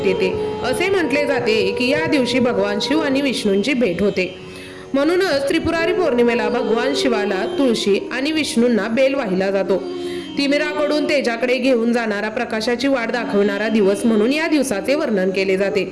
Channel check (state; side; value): identical; both; correlation 1.00